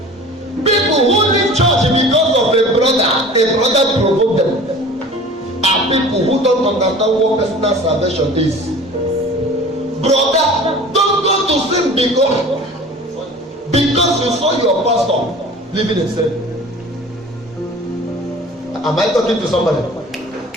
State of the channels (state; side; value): normal; both; correlation 0.42